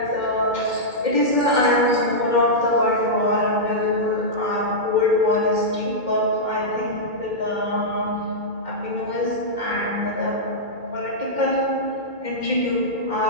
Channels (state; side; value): late; left; 2.1 ms